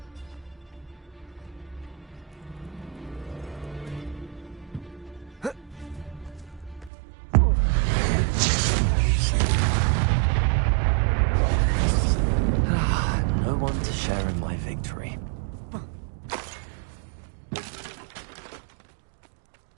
No one to share in my victory.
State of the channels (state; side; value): drops out; left; at 6.9 s